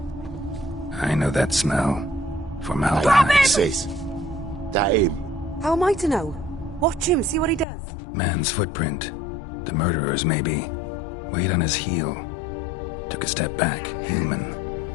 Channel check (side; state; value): right; drops out; at 7.7 s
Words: I know that smell. Formaldehyde. Sis, that him? How am I to know? Watch him, see what he does. Man's footprint. The murderer's, maybe. Weight on his heel. Took a step back. Human.